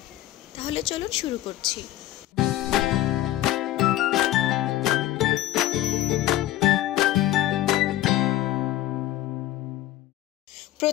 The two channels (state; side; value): quieter; right; 14.6 dB